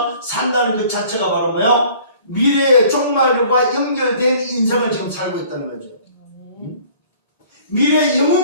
산다는 것 자체가 바로 뭐요? 미래의 종말과 연결된 인생을 지금 살고 있다는 거죠. 미래의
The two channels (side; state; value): both; inverted; correlation -0.52